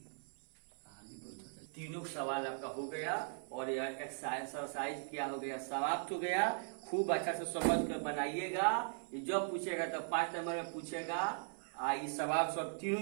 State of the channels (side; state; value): left; silent; 52 dB below the other